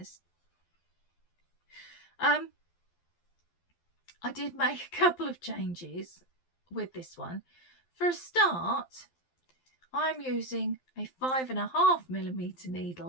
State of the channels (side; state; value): right; late; 12 ms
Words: I did make a couple of changes with this one. For a start, I'm using a 5.5mm